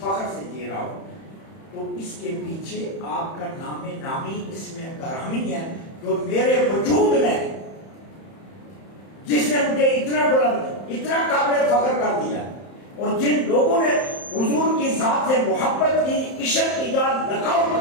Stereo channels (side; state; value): right; late; 31 ms